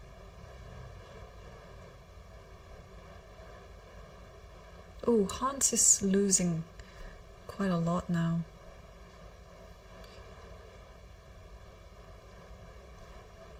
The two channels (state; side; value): identical; both; correlation 1.00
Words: Oh, Hans is losing quite a lot now.